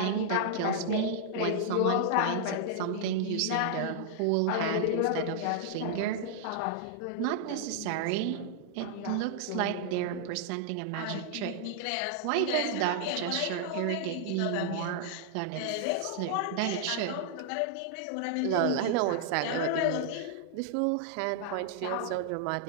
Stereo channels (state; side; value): different; both; correlation -0.01